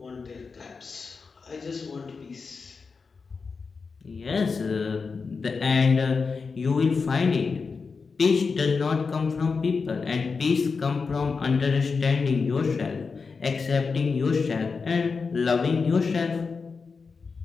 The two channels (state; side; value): quieter; right; 4.9 dB